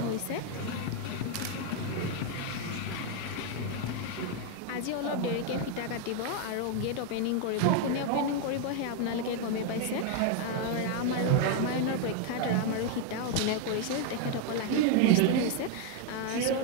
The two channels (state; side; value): different; both; correlation 0.00